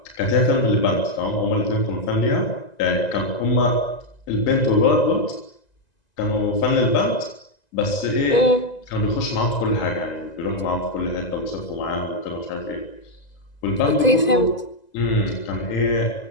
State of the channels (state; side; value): late; right; 2.0 ms